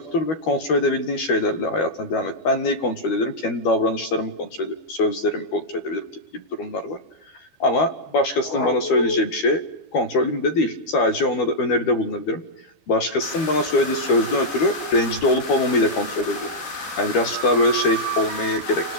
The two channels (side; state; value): right; late; 12 ms